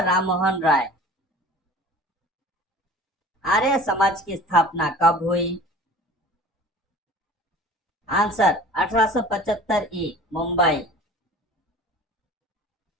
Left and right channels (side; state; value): both; normal; correlation 0.42